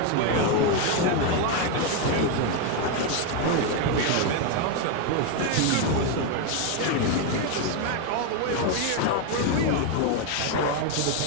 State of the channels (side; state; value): both; different; correlation 0.01